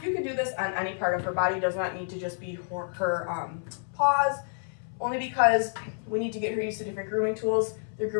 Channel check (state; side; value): silent; right; 59 dB below the other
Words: You can do this on any part of her body. It does not need to just be her paws, only because we need to get her used to different grooming tools. The